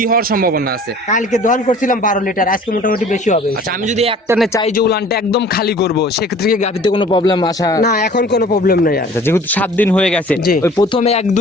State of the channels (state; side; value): normal; both; correlation 0.48